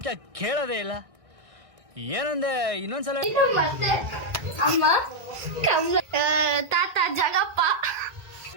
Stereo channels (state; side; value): late; left; 1.6 ms